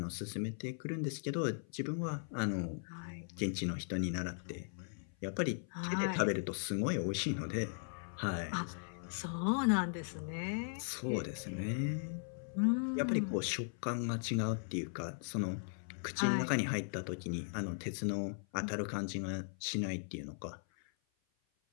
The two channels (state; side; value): silent; right; 52 dB below the other